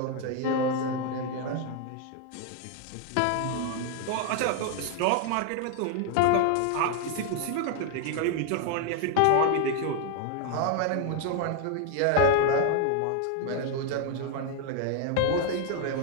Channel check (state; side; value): different; both; correlation 0.00